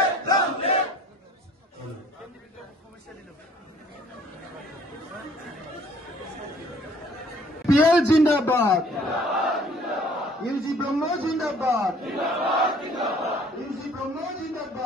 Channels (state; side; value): normal; both; correlation 0.56